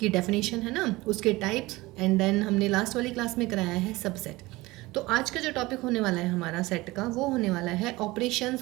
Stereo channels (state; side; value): quieter; left; 20.5 dB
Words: की डेफिनेशन, है ना, उसके टाइप्स, एंड देन हमने लास्ट वाली क्लास में कराया है सबसेट। तो आज का जो टॉपिक होने वाला है हमारा सेट का, वो होने वाला है